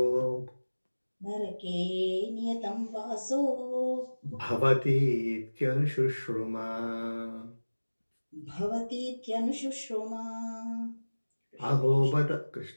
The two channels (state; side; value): inverted; both; correlation -1.00